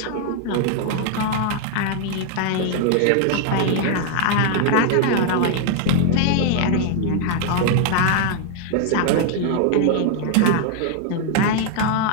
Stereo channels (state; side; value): different; both; correlation 0.00